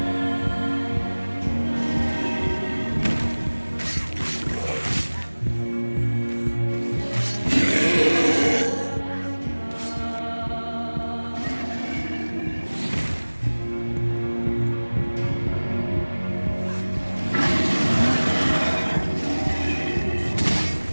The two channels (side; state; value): both; inverted; correlation -1.00